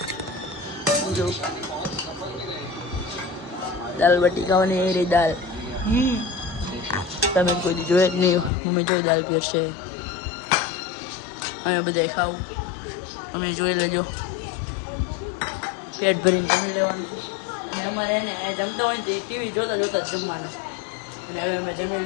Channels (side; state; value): right; drops out; at 8.5 s